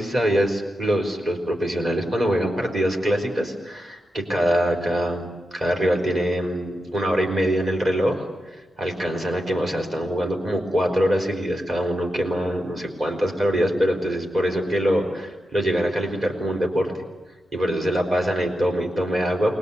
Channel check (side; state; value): both; normal; correlation 0.88